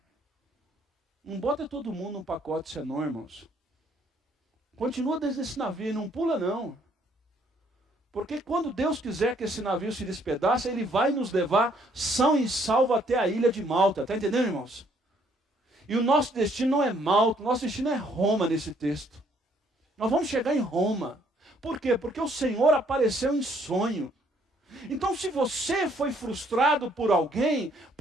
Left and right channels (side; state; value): both; normal; correlation 0.66